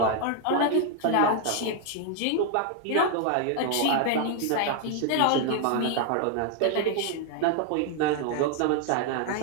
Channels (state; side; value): different; both; correlation 0.00